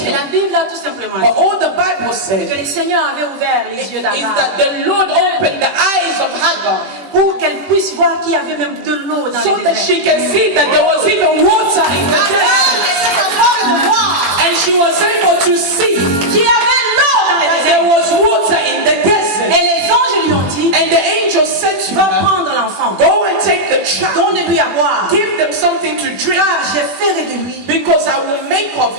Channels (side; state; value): left; late; 21 ms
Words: la Bible a tout simplement But dit all the Bible que said le Seigneur avait ouvert les yeux is d'Agar that the Lord opened the eyes of Hagar pour qu'elle puisse voir qu'il y avait même de l'eau dans so le that désert. she can see that there was even water in the desert. And she was able to see Qu'il y avait l'eau dans le that désert. there was water in the desert. Et les anges lui ont dit, And the angel said to va her, prendre l'enfant, go and take the child, donne-lui à boire, give them something to drink, car je ferai de lui because I will make of